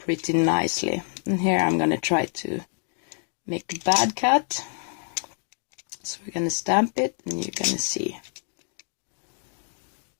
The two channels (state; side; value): silent; right; 58 dB below the other